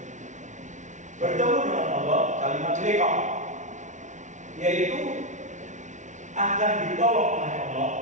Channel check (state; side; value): late; left; 0.36 ms